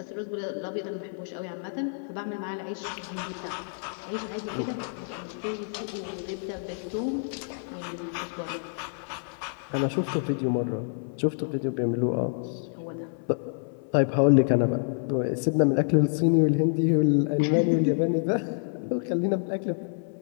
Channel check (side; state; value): right; silent; 59 dB below the other